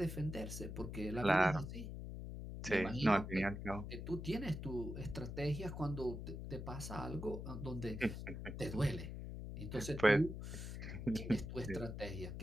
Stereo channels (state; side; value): noise; left; hum, 7 dB below the sound